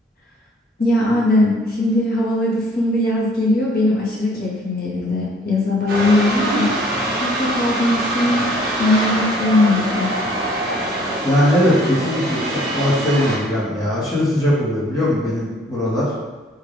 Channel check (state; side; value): normal; both; correlation 0.59